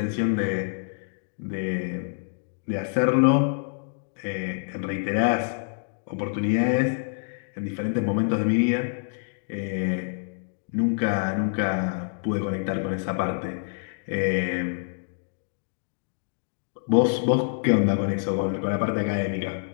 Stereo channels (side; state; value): right; silent; digital silence